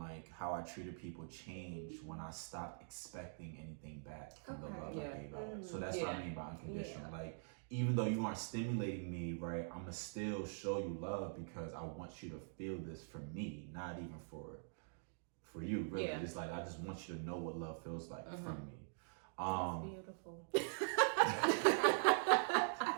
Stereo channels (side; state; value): left; silent; digital silence